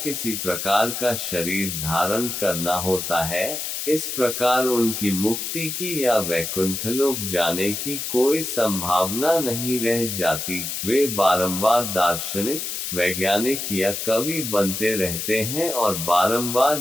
किसी प्रकार का शरीर धारण करना होता है। इस प्रकार उनकी मुक्ति की या वैकुंठलोक जाने की कोई संभावना नहीं रह जाती। वे बारंबार दार्शनिक, वैज्ञानिक या कवि बनते रहते हैं और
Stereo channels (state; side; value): noise; left; hiss, 4 dB below the sound